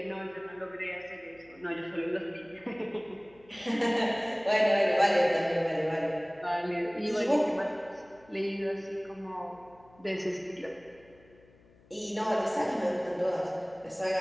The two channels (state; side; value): noise; left; hum, 28 dB below the sound